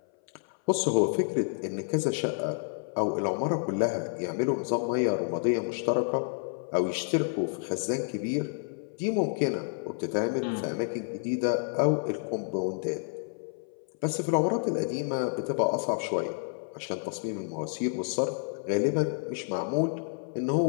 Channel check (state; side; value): silent; right; 58 dB below the other